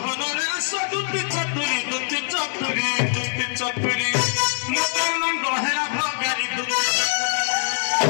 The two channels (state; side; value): silent; right; digital silence